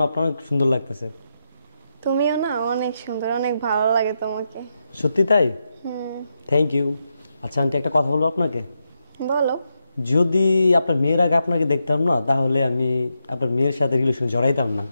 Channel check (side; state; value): both; inverted; correlation -0.85